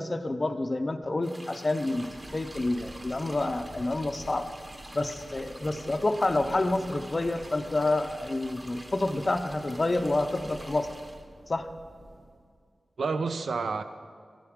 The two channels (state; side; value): normal; both; correlation 0.96